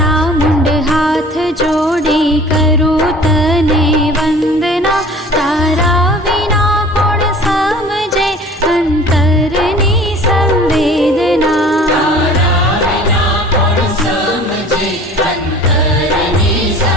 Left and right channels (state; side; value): normal; both; correlation 0.46